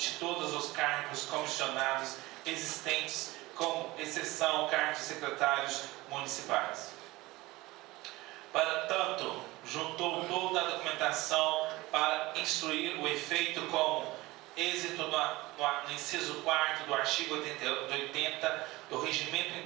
todos os cargos comissionados existentes, com exceção cargos de secretários municipais. Para tanto, juntou toda a documentação para instruir o efeito como êxito no inciso 4º do artigo 80 do Regimento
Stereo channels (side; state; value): left; quieter; 20.1 dB